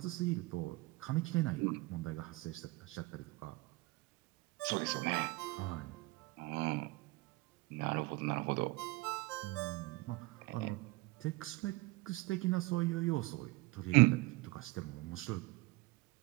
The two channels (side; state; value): left; quieter; 22.5 dB